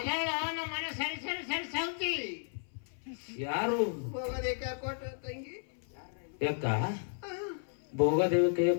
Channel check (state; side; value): silent; right; 55 dB below the other